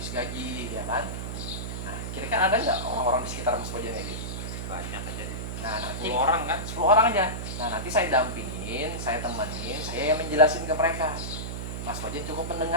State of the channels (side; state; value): right; noise; hum, 5 dB below the sound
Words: gaji, ya kan? Nah, kira-kira ada nggak orang-orang di sekitar Mas Bojan kayak gitu? banyak aja deh. Nah, nanti 10 orang kan? 10 orang aja. Nah, nanti saya dampingin, saya temenin, saya yang menjelasin ke mereka. Mas Bojan cukup